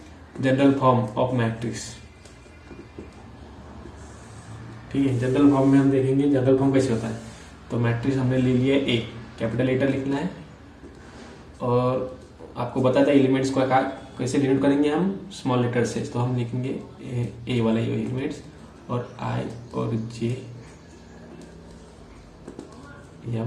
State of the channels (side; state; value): both; identical; correlation 1.00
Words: जनरल फॉर्म ऑफ मैट्रिक्स। ठीक है, जनरल फॉर्म में हम देखेंगे जनरल फॉर्म कैसे होता है। तो मैट्रिक्स हमने ले लिया ए, कैपिटल लेटर लिखना है, और आपको बताया था एलिमेंट्स को कैसे डिनोट करेंगे हम, स्मॉल लेटर से। तो हम लिखेंगे ए वाला एलिमेंट्स, और आई और जे